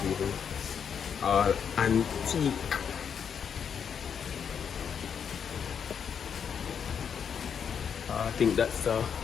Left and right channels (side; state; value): right; quieter; 7.4 dB